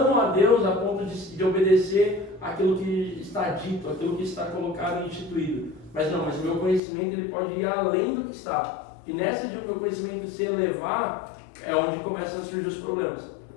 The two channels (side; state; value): right; drops out; at 6.8 s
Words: a Deus a ponto de obedecer aquilo que está dito, aquilo que está colocado e instituído. Mas o meu conhecimento ele pode ir além do que está. E nessa de o meu conhecimento se elevar, é onde começam a surgir os problemas.